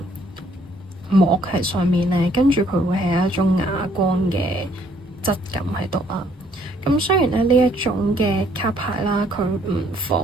膜喺上面咧，跟住佢會係一種啞光嘅質感喺度啦。咁雖然咧呢一種嘅卡牌啦，佢唔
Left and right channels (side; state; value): both; normal; correlation 0.65